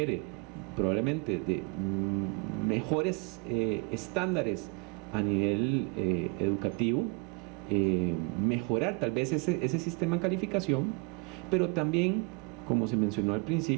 probablemente de mejores estándares a nivel educativo, mejorar tal vez ese sistema de calificación, pero también, como se mencionó al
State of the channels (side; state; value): left; quieter; 31.1 dB